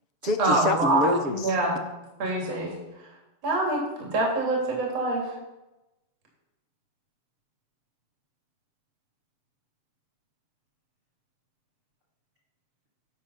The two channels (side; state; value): left; late; 7.1 ms